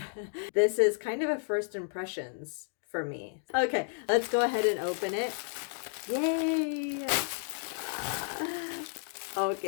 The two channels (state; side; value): silent; right; 57 dB below the other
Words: This is kind of a first impressions for me. Okay, let's go ahead and open it. Yay!